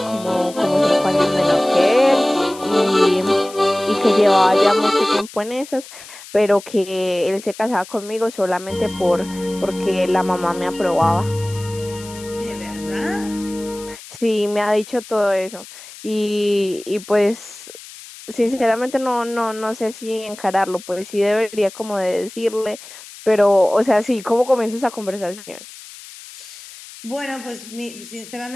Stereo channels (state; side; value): noise; left; hiss, 17 dB below the sound